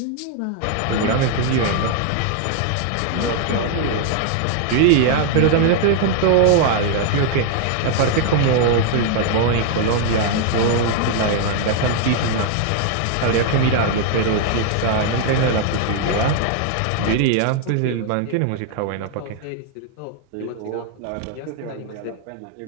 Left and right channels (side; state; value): both; different; correlation 0.00